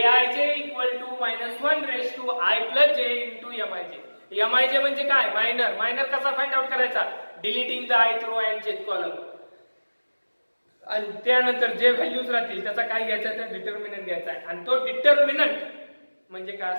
equal to -1 to I + j into Mij. Mij म्हणजे काय मायनर कसा फाइंड आउट करायचा deleting the ith row and jth column. आणि त्यानंतर जे व्हॅल्यूज राहतील त्याचा काय घ्यायचा तर डिटर्मिनंट घ्यायचा आहे आणि तो डिटर्मिनंट म्हणजे काय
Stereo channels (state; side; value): inverted; both; correlation -1.00